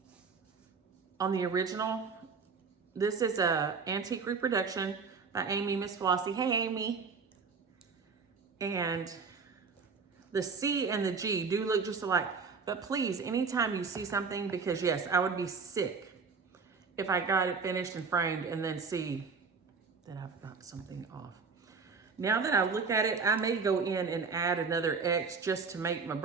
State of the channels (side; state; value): left; quieter; 5.1 dB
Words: original. This is a antique reproduction by Amy, Miss Flossie. Hey, Amy. And the C and the G do look just alike. But please, anytime you see something, because yes, I would be sick if I got it finished and framed and then see that I've got something off. Now that I look at it, I may go in and add another X just to make my